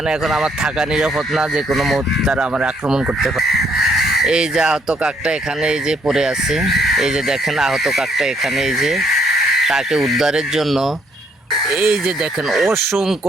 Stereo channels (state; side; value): normal; both; correlation 0.70